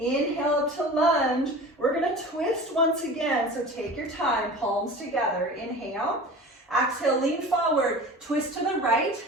up to lunge. We're gonna twist once again, so take your time, palms together. Inhale. Exhale, lean forward, twist to the right.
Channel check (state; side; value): normal; both; correlation 0.37